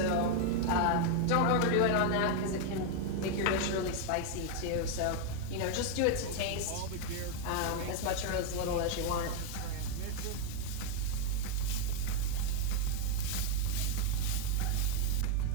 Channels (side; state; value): both; different; correlation 0.01